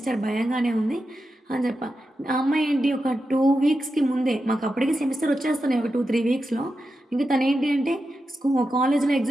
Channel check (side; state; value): both; normal; correlation 0.89